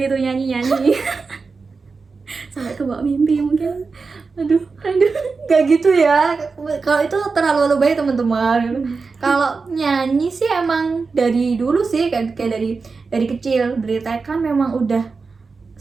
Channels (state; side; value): quieter; left; 4.5 dB